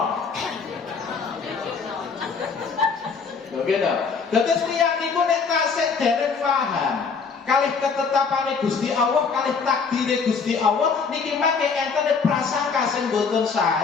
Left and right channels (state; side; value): quieter; right; 5.3 dB